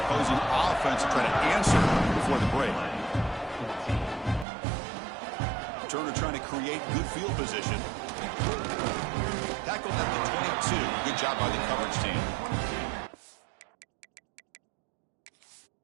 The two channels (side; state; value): left; drops out; at 4.5 s